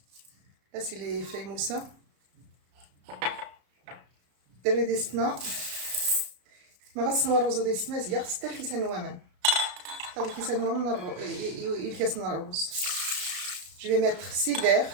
Là c'est les feuilles moussa. دري ديستنا ما غسلوا الرز ديستنا زياغ ستة الكيسان وامان هذا الكيسان وامان الكاس من الرز. Je vais mettre 6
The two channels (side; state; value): left; late; 33 ms